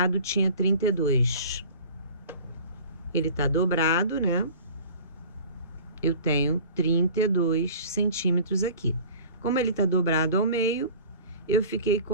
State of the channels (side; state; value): both; inverted; correlation -0.44